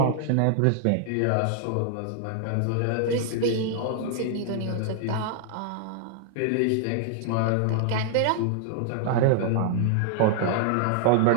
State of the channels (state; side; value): different; both; correlation -0.01